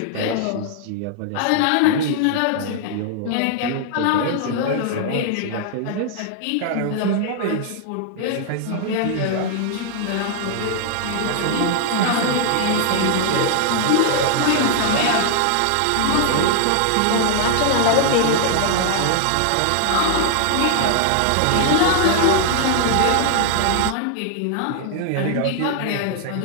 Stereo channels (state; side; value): different; both; correlation 0.00